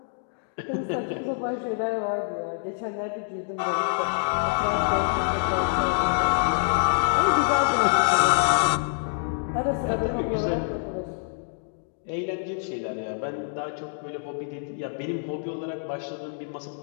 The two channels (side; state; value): right; silent; digital silence